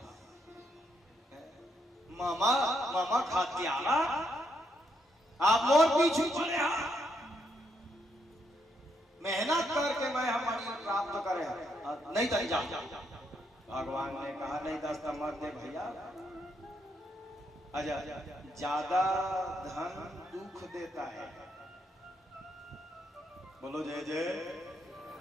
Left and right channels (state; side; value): normal; both; correlation 0.76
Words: मामा मामा खातियारा आप मोर पीछू चले मेहनत करके मैं हमारी प्राप्त करे नहीं तो जा भगवान ने कहा नहीं 10 मत दे भैया आजा ज्यादा धन दुख देता है बोलो जय जय